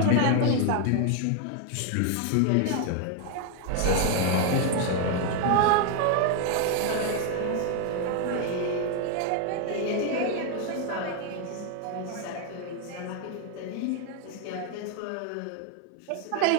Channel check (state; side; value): different; both; correlation 0.00